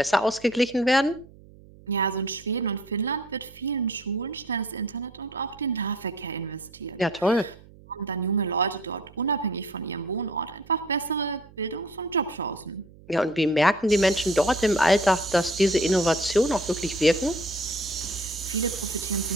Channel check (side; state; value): right; noise; hum, 23 dB below the sound